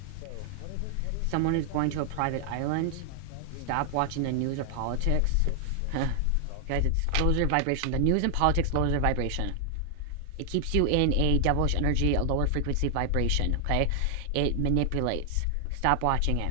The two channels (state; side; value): different; both; correlation 0.00